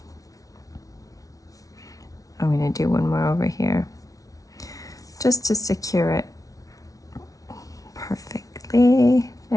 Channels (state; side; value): late; right; 0.17 ms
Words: I'm going to do one more over here just to secure it perfectly.